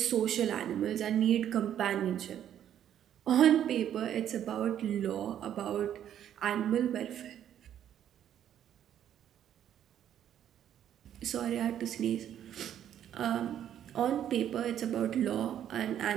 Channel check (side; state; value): left; quieter; 10.4 dB